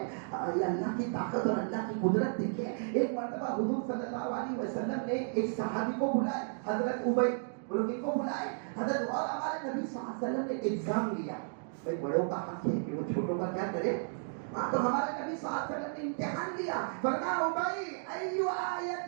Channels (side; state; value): left; silent; digital silence